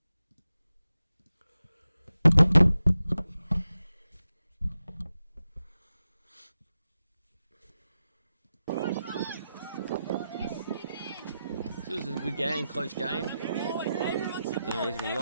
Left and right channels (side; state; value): both; inverted; correlation -0.91